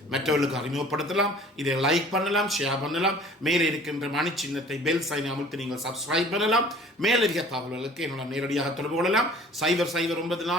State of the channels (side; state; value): both; normal; correlation 0.49